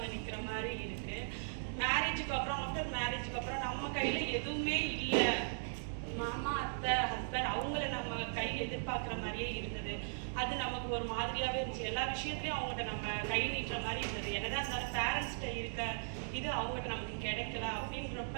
நிற்கிற மாதிரி இருக்குது. மேரேஜுக்கு அப்புறம், ஆஃப்டர் மேரேஜுக்கு அப்புறம் நம்ம கையில் எதுவுமே இல்லை. மாமா, அத்தை, ஹஸ்பண்ட் அவங்கள நம்ம கை எதிர்பார்க்குற மாதிரியே இருந்தது. அது நமக்கு ஒரு மாதிரியாகவே இருந்துச்சு. எல்லா விஷயத்துலையும் அவங்ககிட்ட நம்ம கை நீட்டுற மாதிரி இருந்தது. என்னதான் இருந்தாலும் பேரண்ட்ஸ்கிட்ட இருக்க இது அவங்ககிட்ட நமக்கு கிடைக்கல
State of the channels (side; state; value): left; silent; digital silence